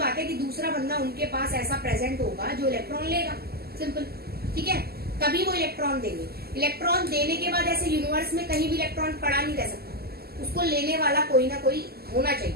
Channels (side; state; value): left; late; 0.46 ms